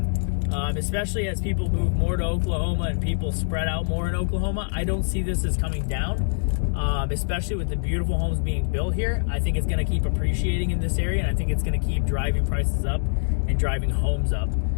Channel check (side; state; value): right; silent; digital silence